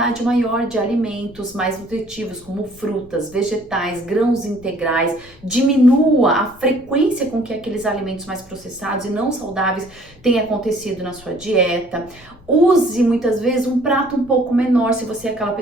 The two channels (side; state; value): left; noise; rumble, 24 dB below the sound